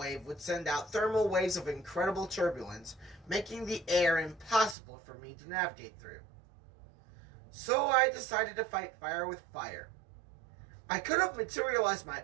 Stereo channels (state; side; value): drops out; left; at 4.8 s